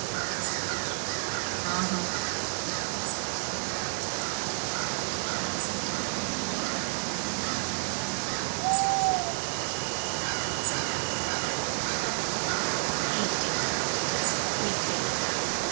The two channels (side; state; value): left; silent; digital silence